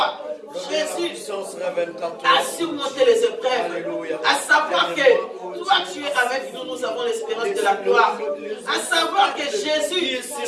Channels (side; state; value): both; identical; correlation 1.00